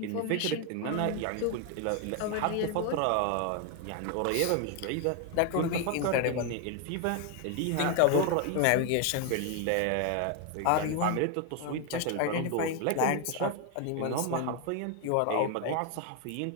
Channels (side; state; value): both; different; correlation 0.01